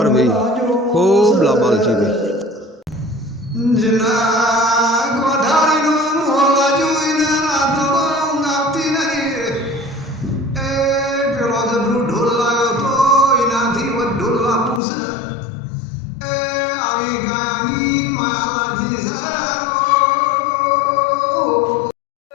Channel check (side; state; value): right; drops out; at 14.8 s